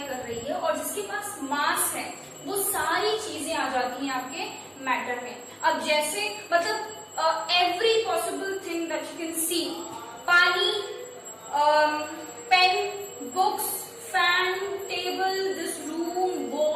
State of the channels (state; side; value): identical; both; correlation 1.00